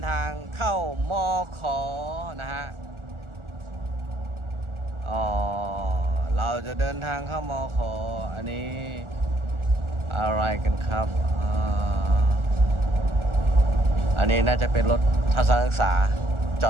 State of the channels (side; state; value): left; late; 1.4 ms